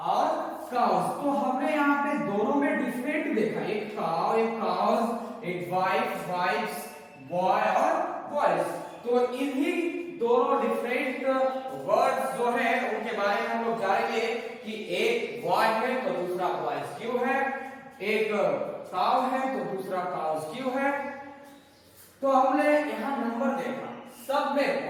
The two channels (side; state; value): both; identical; correlation 1.00